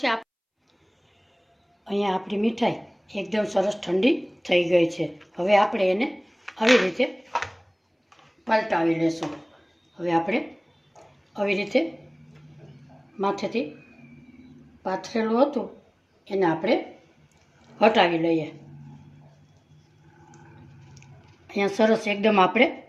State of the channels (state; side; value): identical; both; correlation 1.00